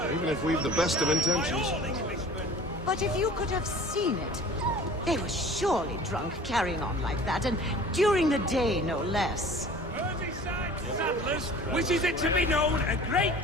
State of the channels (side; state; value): both; normal; correlation 0.44